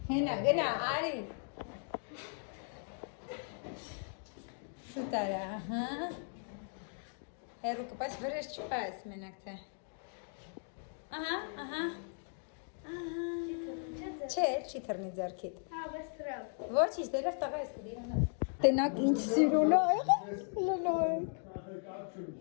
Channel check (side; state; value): right; silent; 53 dB below the other